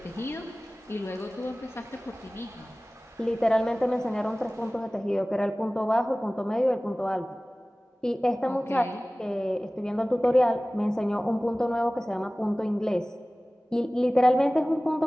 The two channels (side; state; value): both; normal; correlation 0.98